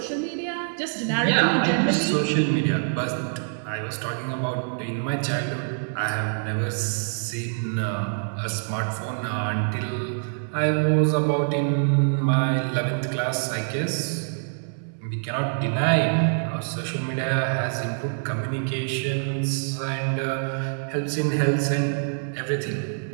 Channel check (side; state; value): left; silent; digital silence